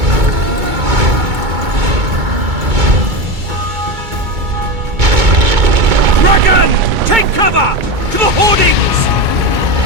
Dragon! Take cover! To the hoardings!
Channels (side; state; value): left; late; 2.2 ms